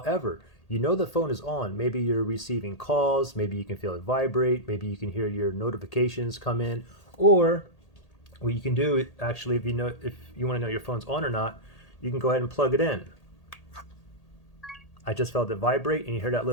you know the phone is on. Maybe you're receiving calls, maybe you can feel it vibrate, maybe you can hear your notifications come in, or what you can do actually, if you want to know your phone's on or not, you can go ahead and plug it in. I just felt it vibrate and you hear that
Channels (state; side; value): late; right; 1.8 ms